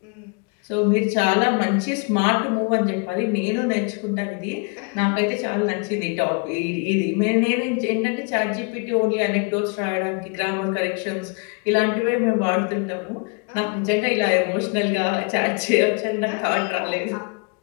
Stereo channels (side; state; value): right; quieter; 34.0 dB